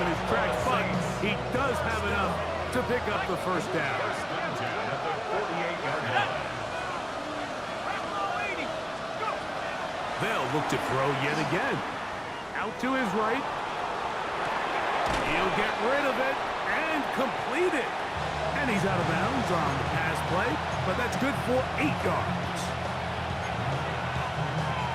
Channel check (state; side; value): identical; both; correlation 1.00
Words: his tracks, but he does have enough to pick up the first down. They'll look to throw yet again. Out to his right. He'll get rid of it and complete it. And he's out of bounds on the pass play, but that's good for 8 yards.